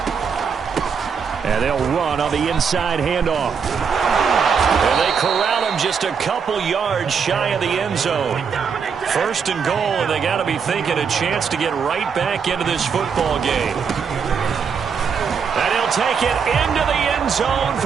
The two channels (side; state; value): left; quieter; 6.3 dB